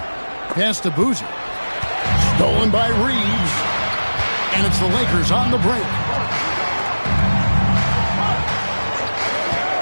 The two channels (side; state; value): both; inverted; correlation -1.00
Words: Pass to Boozer. Stolen by Reeves. And it's the Lakers on the break.